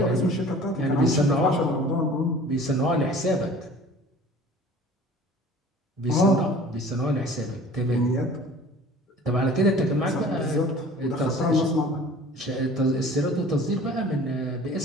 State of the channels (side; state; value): both; normal; correlation 0.46